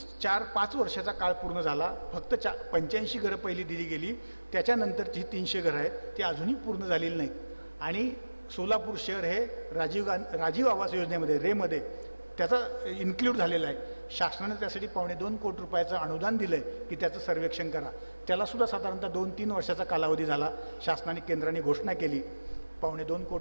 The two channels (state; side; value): inverted; both; correlation -1.00